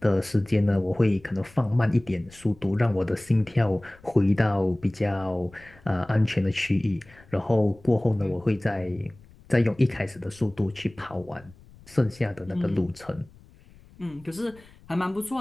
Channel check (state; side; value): noise; left; rumble, 25 dB below the sound